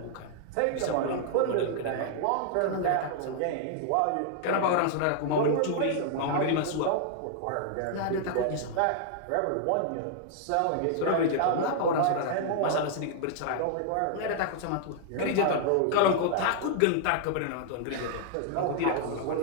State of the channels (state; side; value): different; both; correlation -0.01